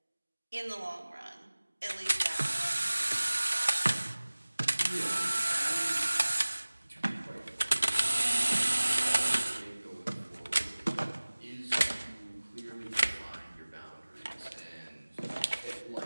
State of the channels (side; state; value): both; inverted; correlation -1.00